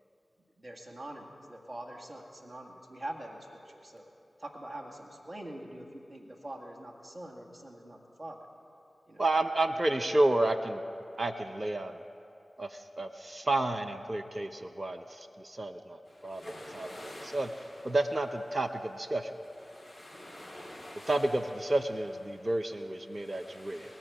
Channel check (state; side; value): normal; both; correlation 0.95